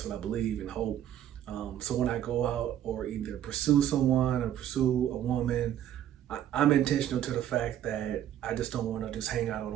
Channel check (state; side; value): quieter; left; 11.1 dB